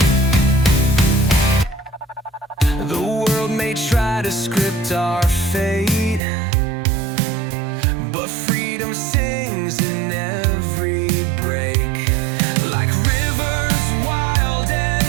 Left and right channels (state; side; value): drops out; left; at 6.2 s